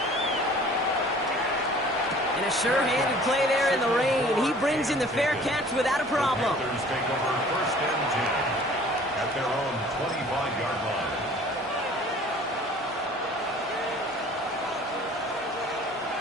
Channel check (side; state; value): both; normal; correlation 0.49